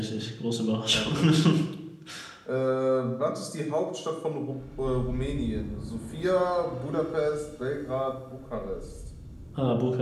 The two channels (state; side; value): identical; both; correlation 1.00